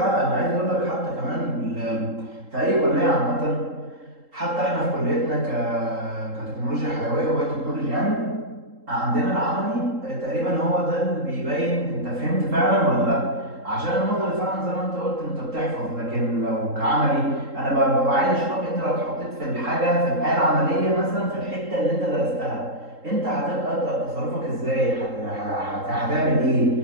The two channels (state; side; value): late; left; 3.8 ms